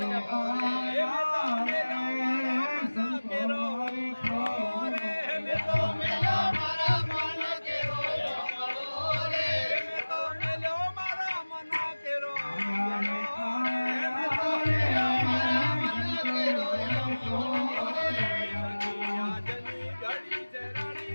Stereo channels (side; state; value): both; inverted; correlation -1.00